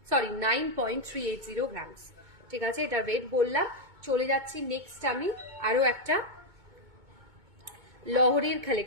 সরি 9.380 গ্রামস, ঠিক আছে এটার ওয়েট বললাম। চলে যাচ্ছি নেক্সট আমি আরো একটা লহরির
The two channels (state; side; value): late; left; 2.2 ms